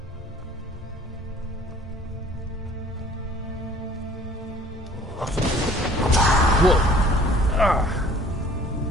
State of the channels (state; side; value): normal; both; correlation 0.53